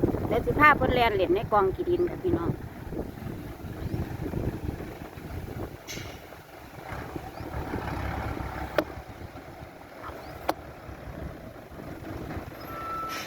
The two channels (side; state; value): both; identical; correlation 1.00